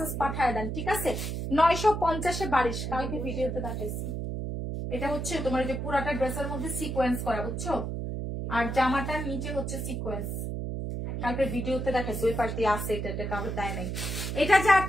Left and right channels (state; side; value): noise; right; hum, 3 dB below the sound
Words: পাঠায় দেন, ঠিক আছে। 950 এ 22। কালকে ভিডিওতে দেখাইছি। এটা হচ্ছে তোমার যে পুরাটা ড্রেসের মধ্যে সিকোয়েন্স করা, বুঝছো, আর জামাটার নিচে হচ্ছে সিকোয়েন্স। কালকে ভিডিওতে দেখাইছি, ওই পাশ দিয়ে আছে, এটা কাউকে দেয় নাই। এটা যার